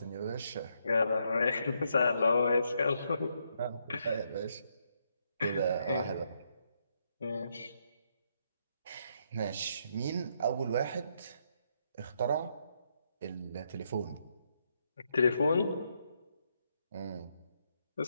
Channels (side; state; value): both; inverted; correlation -0.77